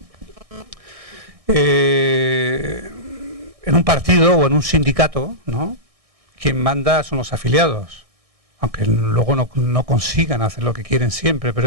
en un partido o en un sindicato, ¿no?, quien manda son los afiliados, aunque luego no consigan hacer lo que quieren siempre, pero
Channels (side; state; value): left; late; 1.6 ms